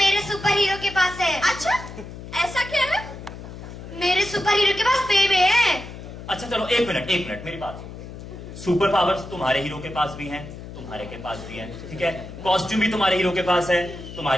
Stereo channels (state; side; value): noise; left; hum, 12 dB below the sound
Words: सुपर हीरो के पास है। अच्छा ऐसा क्या है? मेरे सुपर हीरो के पास बेबे है। अच्छा चलो एक मिनट मेरी बात। सुपर पावर्स तुम्हारे हीरो के पास भी हैं, तुम्हारे के पास भी हैं, ठीक है। कॉस्ट्यूम भी तुम्हारे हीरो के पास है,